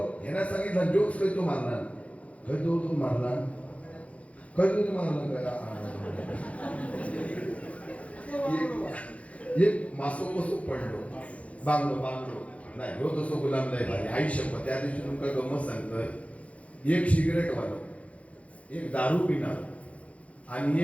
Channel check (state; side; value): late; right; 0.065 ms